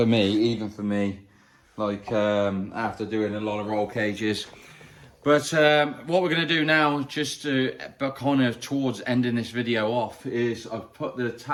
me, even for me, like after doing a lot of roll cages. But what we're going to do now, just to kind of towards ending this video off, is I've put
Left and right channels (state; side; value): identical; both; correlation 1.00